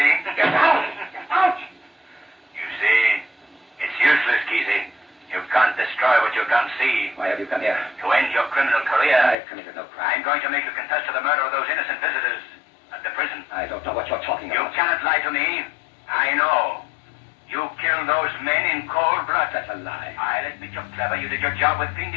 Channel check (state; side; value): drops out; right; at 9.3 s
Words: Get out. Get out. You see, it's useless, Kesey. You can't destroy what you can't see. Why have you come here? To end your criminal career. I've committed no crime. I'm going to make you confess to the murder of those innocent visitors at the prison. I don't know what you're talking You about. cannot lie to me. I know. You killed those men in cold blood. That's a lie. I'll admit you're clever. You did your job with